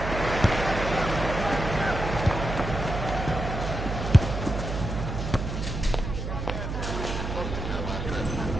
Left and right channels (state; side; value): noise; right; hum, 4 dB below the sound